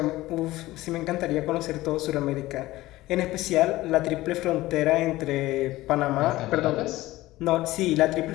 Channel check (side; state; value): right; quieter; 17.5 dB